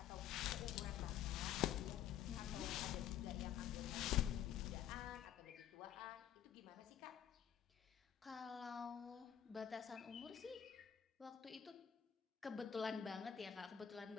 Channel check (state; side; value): quieter; right; 9.9 dB